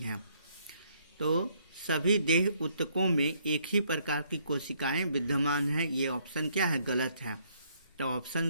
तो सभी देह ऊतकों में एक ही प्रकार की कोशिकाएं विद्यमान है, ये ऑप्शन क्या है? गलत है। तो ऑप्शन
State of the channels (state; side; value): inverted; both; correlation -0.68